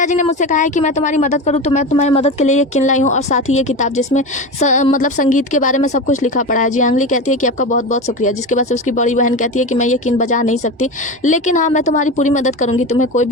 ने मुझसे कहा है कि मैं तुम्हारी मदद करूँ तो मैं तुम्हारी मदद के लिए ये किन लाई हूँ और साथ ही ये किताब जिसमें मतलब संगीत के बारे में सब कुछ लिखा पड़ा है। जियांगली कहती है कि आपका बहुत बहुत शुक्रिया, जिसके बाद से उसकी बड़ी बहन कहती है कि मैं ये किन बजा नहीं सकती, लेकिन हाँ मैं तुम्हारी पूरी मदद करूँगी, तुम्हें कोई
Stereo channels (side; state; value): both; normal; correlation 0.24